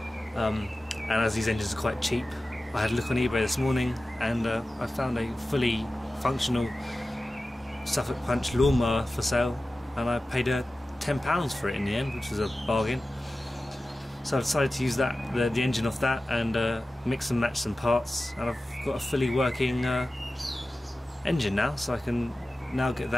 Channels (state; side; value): normal; both; correlation 0.95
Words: and as these engines are quite cheap, I had a look on eBay this morning and I found a fully functional Suffolk Punch lawnmower for sale, and I paid £10 for it in the end, which was a bargain. So I decided to use the engine off that and mix and match some parts, and I've got a fully working engine now, so I can now get